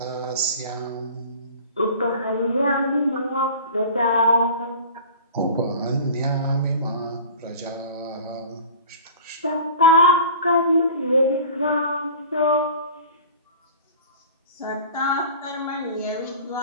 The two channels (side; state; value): both; inverted; correlation -0.41